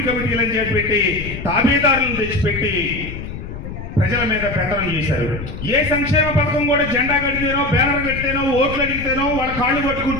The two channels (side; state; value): left; noise; rumble, 9 dB below the sound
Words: కమిటీలను చేపట్టి తాబేదారులను తెచ్చిపెట్టి ప్రజల మీద పెత్తనం చేశారు. ఏ సంక్షేమ పథకం కూడా జెండా కడితేనో, బ్యానర్ కడితేనో, ఓట్లు అడిగితేనో, వాళ్ళ కాళ్ళు